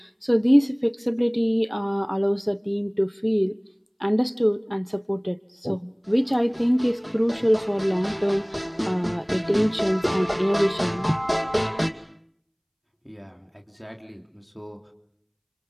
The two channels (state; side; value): identical; both; correlation 1.00